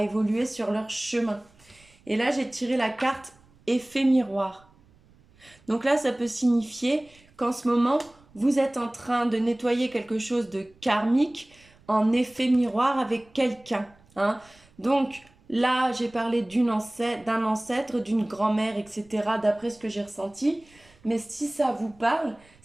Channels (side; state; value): right; noise; rumble, 29 dB below the sound